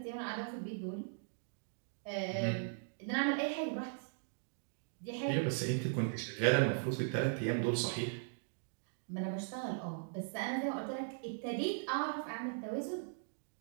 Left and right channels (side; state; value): left; silent; digital silence